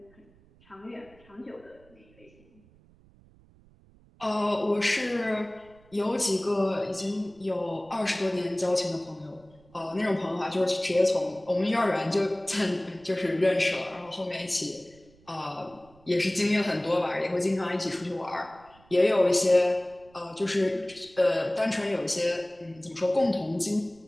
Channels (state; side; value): noise; right; rumble, 28 dB below the sound